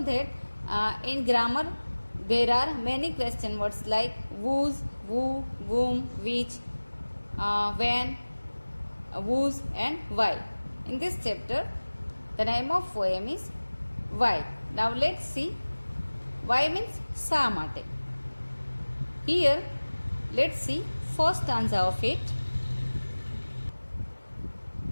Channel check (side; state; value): both; inverted; correlation -1.00